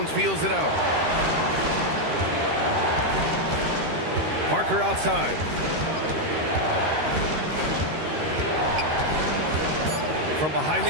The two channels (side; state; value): left; late; 13 ms